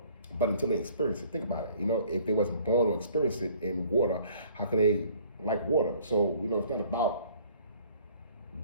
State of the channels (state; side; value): inverted; both; correlation -0.56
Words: But until they experience it, think about it. You know, if they wasn't born or experienced it in water, how could they like water? So, you know, it's not about